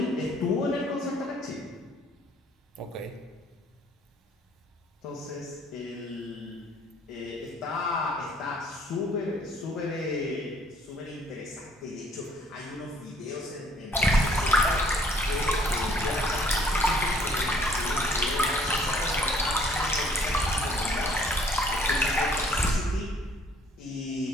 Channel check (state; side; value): normal; both; correlation 0.59